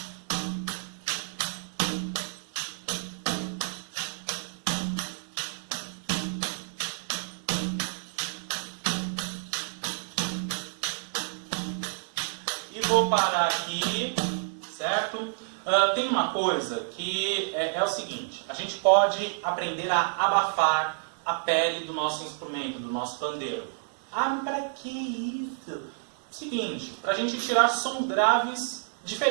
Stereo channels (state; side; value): silent; left; digital silence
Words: vou parar aqui, certo? Tem uma coisa que é o seguinte, a gente pode aprender a abafar a pele do nosso instrumento, do nosso pandeiro. Ah, para que isso? Seguinte, para a gente tirar sons graves